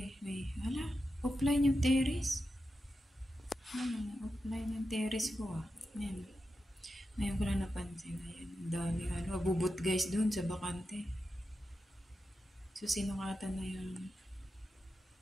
offline yung terrace. Offline yung terrace ko, ah. Ayan. Ngayon ko lang napansin. Ayan, dami, abubot, guys, doon sa bakante. So, sinungatan na yung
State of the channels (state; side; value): normal; both; correlation 0.90